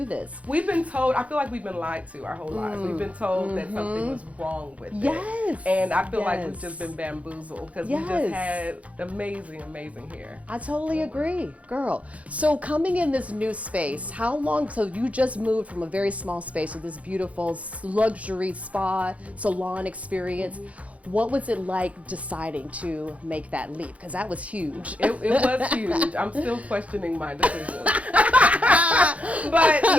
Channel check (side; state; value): left; late; 0.066 ms